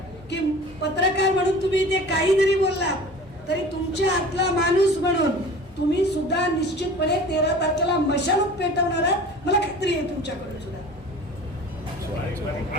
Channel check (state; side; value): normal; both; correlation 0.41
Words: की पत्रकार म्हणून तुम्ही ते काही जरी बोललात तरी तुमच्या आतला माणूस म्हणून तुम्ही सुद्धा निश्चितपणे 13 तारखेला मशालच पेटवणार आहात. मला खात्री आहे तुमच्याकडून सुद्धा.